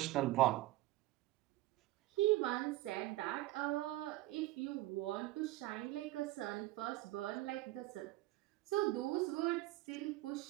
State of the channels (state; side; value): quieter; left; 17.5 dB